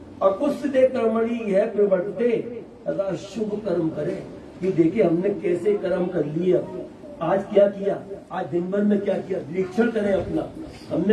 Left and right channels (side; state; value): both; identical; correlation 1.00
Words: अकुस्ते कर्मणि है प्रवर्ते, अगर शुभ कर्म करे। कि देखिए हमने कैसे कर्म कर लिया, आज क्या किया, आज दिन भर में क्या किया, निरीक्षण करें अपना,